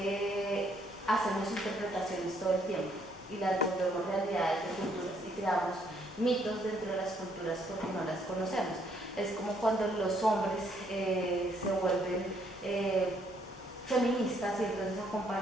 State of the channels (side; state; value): both; normal; correlation 0.69